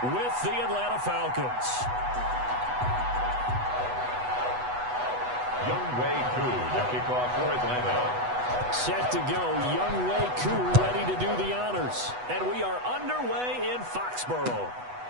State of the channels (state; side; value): late; left; 8.1 ms